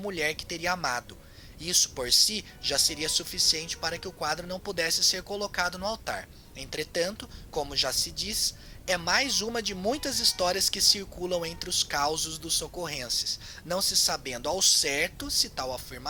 que teria amado. Isso por si já seria suficiente para que o quadro não pudesse ser colocado no altar. Entretanto, como já se diz, é mais uma de muitas histórias que circulam entre os causos dos socorrenses, não se sabendo ao certo se tal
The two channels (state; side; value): identical; both; correlation 1.00